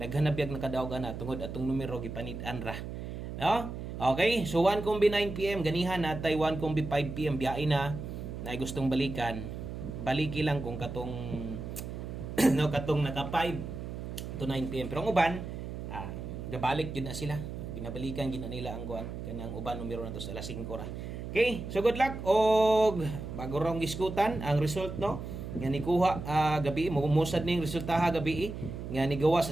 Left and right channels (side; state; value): right; noise; hum, 7 dB below the sound